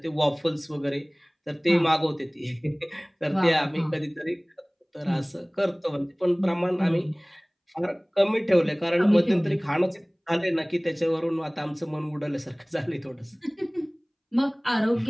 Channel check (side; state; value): both; identical; correlation 1.00